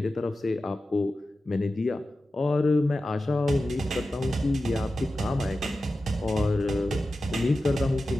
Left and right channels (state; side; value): normal; both; correlation 0.93